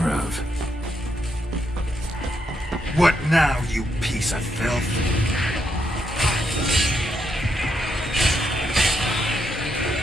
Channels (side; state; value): both; normal; correlation 0.79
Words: of. What now, you piece of filth?